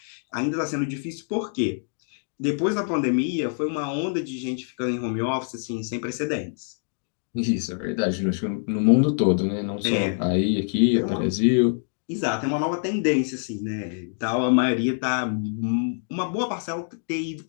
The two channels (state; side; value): silent; right; digital silence